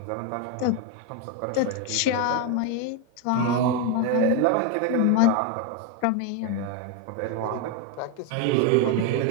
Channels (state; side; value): different; both; correlation 0.02